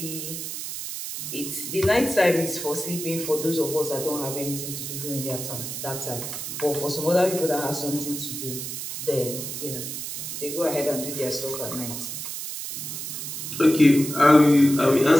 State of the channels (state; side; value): noise; right; hiss, 6 dB below the sound